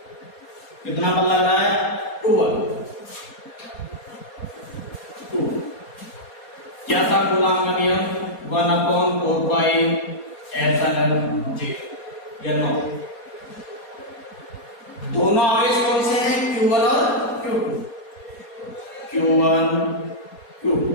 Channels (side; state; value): right; late; 4.2 ms